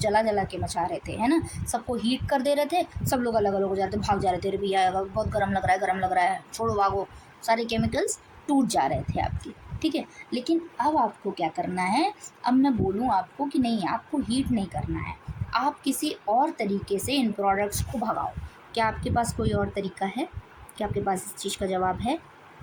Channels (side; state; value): both; identical; correlation 1.00